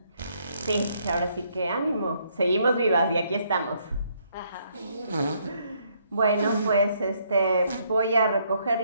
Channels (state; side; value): inverted; both; correlation -0.70